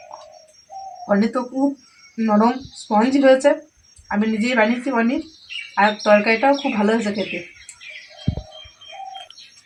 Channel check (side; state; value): both; identical; correlation 1.00